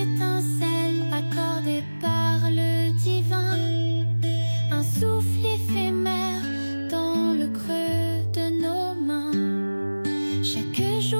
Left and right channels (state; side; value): inverted; both; correlation -1.00